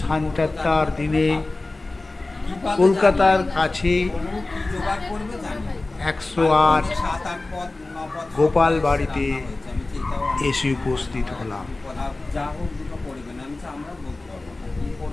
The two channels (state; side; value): quieter; right; 3.1 dB